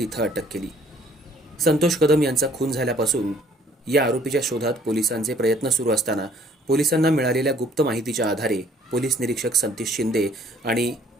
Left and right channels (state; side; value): normal; both; correlation 0.59